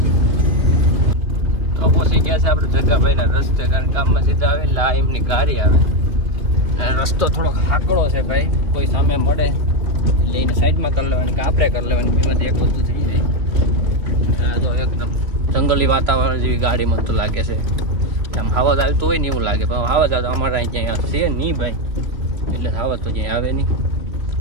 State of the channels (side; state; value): left; late; 3.0 ms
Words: તો પહોંચી ગયા છે આપણે જગાભાઈના રસ્તે કારણ કામમાં સીધા આવે એટલે આ એમની ગાડી આવે અને રસ્તો થોડોક હાકડો છે ભાઈ. કોઈ સામે મળે એટલે એને સાઈડમાં કરી લેવાની કે આપણે કરી લેવાની બેમાંથી એક વસ્તુ થઈ જાય. તો એકદમ જંગલી વાતાવરણ જેવી ગાડી મને તો લાગે છે. આમ આવાજ આવતો હોય ને એવું લાગે પણ આવાજ આવતો અમારે અહીં ક્યાંય છે નહીં ભાઈ એટલે આવાજ તો ક્યાંય આવે નહીં.